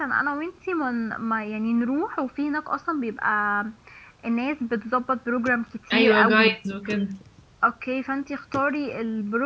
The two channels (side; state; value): both; identical; correlation 1.00